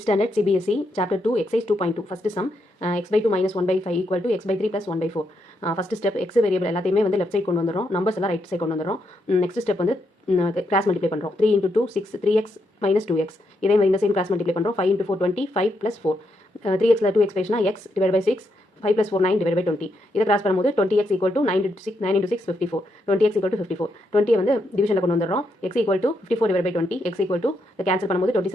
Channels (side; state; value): both; normal; correlation 0.80